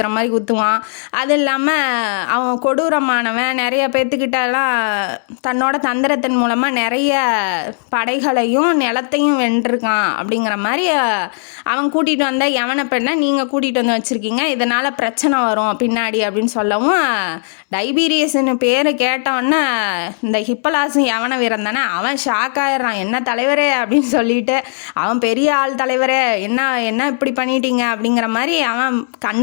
மாதிரி குத்துவான். அது இல்லாமல் அவன் கொடூரமானவன். நிறைய பேர்த்துக்கிட்டலாம் தன்னோட தந்திரத்தின் மூலமாக நிறைய படைகளையும் நிலத்தையும் வென்றிருக்கான். அப்படிங்கிற மாதிரி அவன் கூட்டிகிட்டு வந்த யவன பெண்ணை நீங்கள் கூட்டிகிட்டு வந்து வச்சுருக்கீங்க, இதனால் பிரச்சனை வரும் பின்னாடி அப்படின்னு சொல்லவும், டைபீரியஸ்னு பேர் கேட்டவொன்னே இந்த ஹிப்பலாசும் யவன வீரன் தானே, அவன் ஷாக் ஆயிடுறான். என்ன தலைவரே அப்படின்னு சொல்லிட்டு, அவன் பெரிய ஆள் தலைவரே, என்ன இப்படி பண்ணிட்டீங்க அப்படிங்கிற மாதிரி அவன்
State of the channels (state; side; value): silent; right; 69 dB below the other